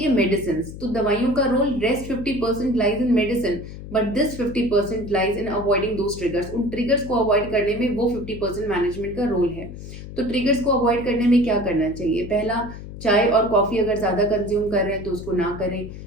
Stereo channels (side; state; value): left; noise; hum, 12 dB below the sound